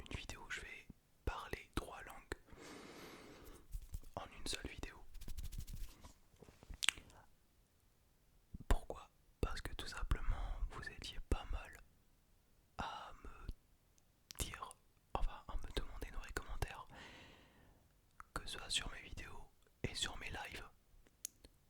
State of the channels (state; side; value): identical; both; correlation 1.00